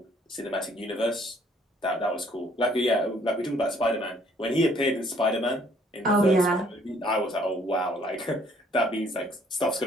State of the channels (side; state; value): both; normal; correlation 0.62